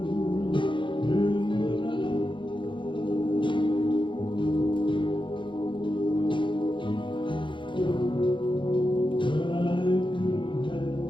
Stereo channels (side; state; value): right; late; 0.23 ms